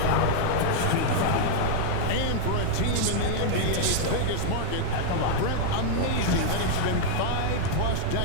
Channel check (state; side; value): different; both; correlation 0.00